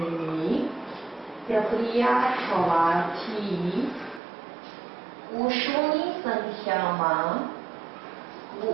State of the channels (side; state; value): left; drops out; at 4.2 s